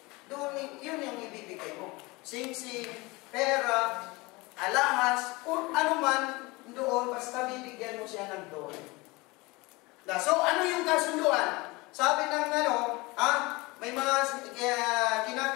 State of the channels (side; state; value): right; quieter; 23.8 dB